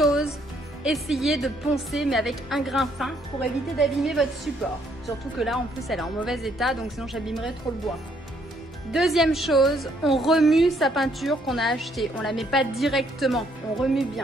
essayez de poncer mais avec un grain fin pour éviter d'abîmer votre support. Surtout que là en plus elle est en mauvais état donc sinon j'abîmerais trop le bois. Deuxième chose, on remue sa peinture qu'on a achetée. On la met pas directement, on remue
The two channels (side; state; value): both; normal; correlation 0.69